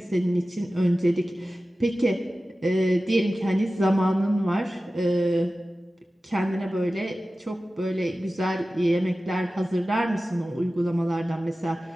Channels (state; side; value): normal; both; correlation 0.95